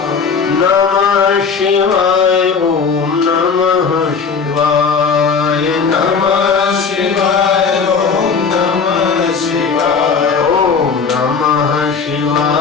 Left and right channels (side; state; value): right; quieter; 5.6 dB